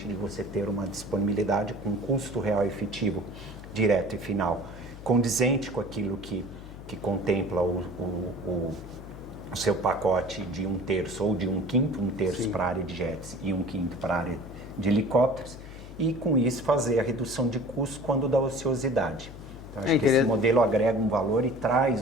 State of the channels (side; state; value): left; noise; hum, 15 dB below the sound